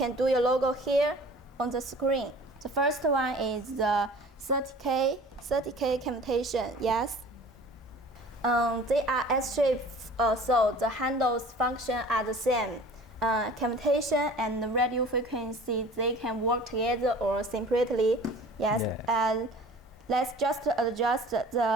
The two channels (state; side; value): normal; both; correlation 0.45